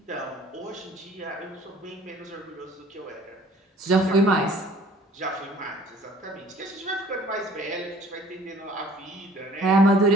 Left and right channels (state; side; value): normal; both; correlation 0.53